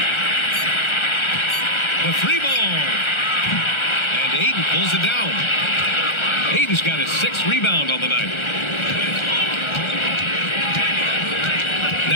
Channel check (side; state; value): right; late; 1.4 ms